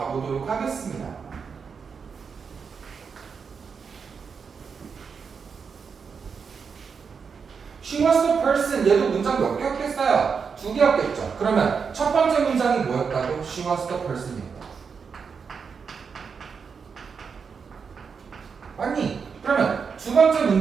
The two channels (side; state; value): left; quieter; 5.9 dB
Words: 하겠습니다. She was the person. 얘도 문장 몇 개였겠어요? 2개였겠죠. 그러면 첫 번째 문장이 뭐였다고? She was the person이었다. 맞니? 그러면 두 번째